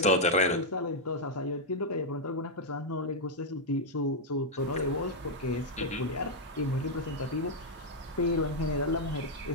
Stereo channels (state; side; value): normal; both; correlation -0.02